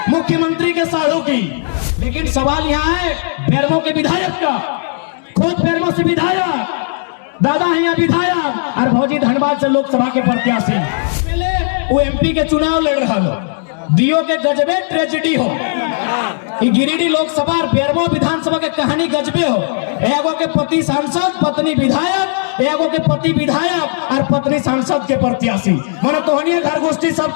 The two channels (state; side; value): silent; right; digital silence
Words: मुख्यमंत्री के साढ़ू की, लेकिन सवाल यहाँ है बेरमो के विधायक का। खुद बेरमो से विधायक, दादा है यहाँ विधायक और भौजी धनबाद से लोकसभा के प्रत्याशी। वो एमपी के चुनाव लड़ रहा हो, दियो के गजबे ट्रेजेडी हो। गिरिडीह लोकसभा और बेरमो विधानसभा के कहानी गजबे हो। एगो के पति सांसद, पत्नी विधायक, एगो के पति विधायक और पत्नी सांसद के प्रत्याशी। मन तोहनी घर गोष्ठी सब